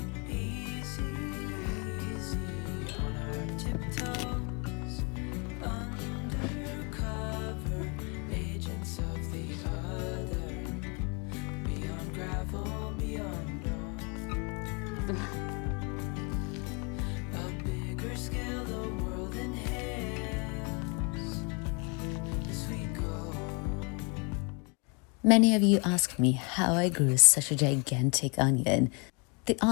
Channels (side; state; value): right; quieter; 33.2 dB